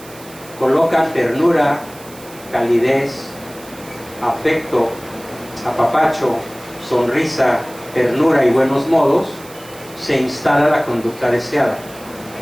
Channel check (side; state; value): right; noise; hiss, 20 dB below the sound